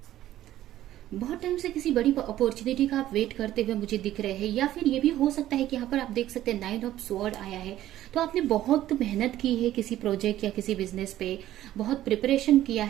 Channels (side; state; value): left; quieter; 13.5 dB